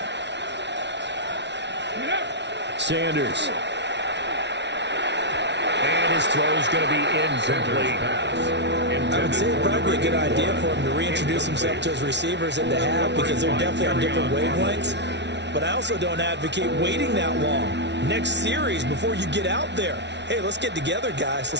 Sanders. And his throw is going to be incomplete. I would say it'd probably be a good idea for him to reintroduce himself to his receivers at the half because they're definitely on different wavelengths. But I also don't advocate waiting that long. Next series before you get out there. Hey, let's get together, guys.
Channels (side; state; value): left; late; 0.51 ms